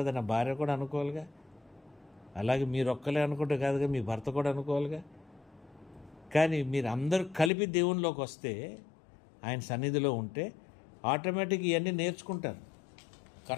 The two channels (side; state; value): right; drops out; at 7.5 s